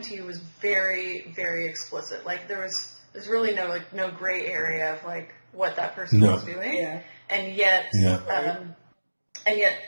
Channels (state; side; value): inverted; both; correlation -1.00